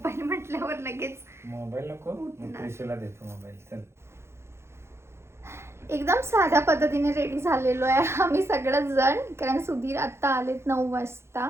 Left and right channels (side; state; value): left; late; 0.13 ms